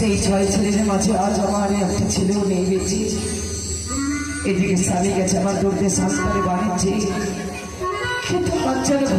6 ছেলের মাঝে আজ আমার একটা ছেলেও নেই বেঁচে। এদিকে স্বামী গেছে আমার দৌড়তে সংস্কারে বাড়িছে, কিন্তু আজ যেন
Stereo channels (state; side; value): identical; both; correlation 1.00